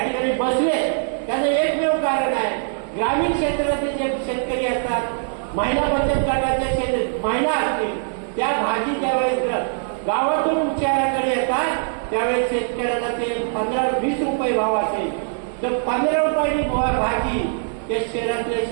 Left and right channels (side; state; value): left; silent; digital silence